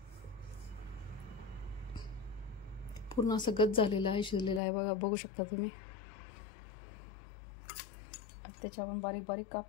पूर्ण असं गच झालेलं आहे, शिजलेलं आहे बघा, बघू शकता तुम्ही. त्याचे आपण बारीक बारीक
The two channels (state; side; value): drops out; right; at 4.6 s